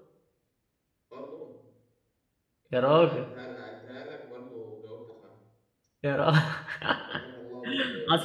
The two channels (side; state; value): both; identical; correlation 1.00